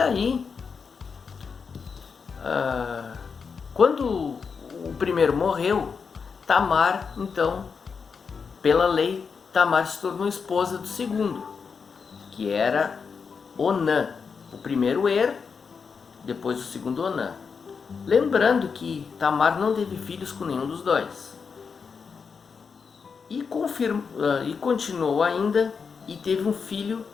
quando o primeiro morreu, Tamar, então, pela lei, Tamar se tornou esposa do segundo, que era Onã. O primeiro depois o segundo Onã. Lembrando que Tamar não teve filhos com nenhum dos dois. E continuou ainda e teve um filho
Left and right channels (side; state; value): right; quieter; 5.7 dB